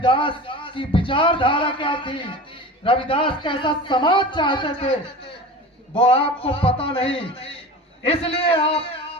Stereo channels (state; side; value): normal; both; correlation 0.34